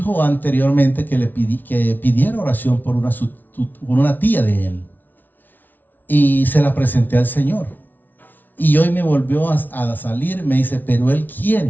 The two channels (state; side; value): late; right; 0.086 ms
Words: anteriormente que que pidiera oración por una tía de él, y se la presenté al Señor. Y hoy me volvió a salir, me dice, pero él